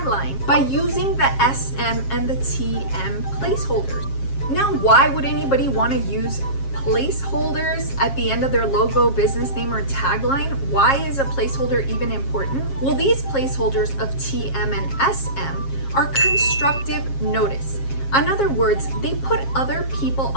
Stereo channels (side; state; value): right; late; 7.4 ms